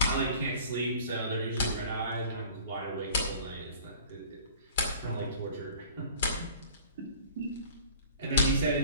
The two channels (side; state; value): both; inverted; correlation -0.46